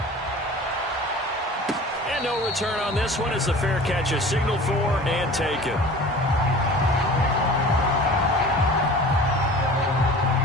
And no return on this one as the fair catch is signaled for and taken.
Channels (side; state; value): both; normal; correlation 0.41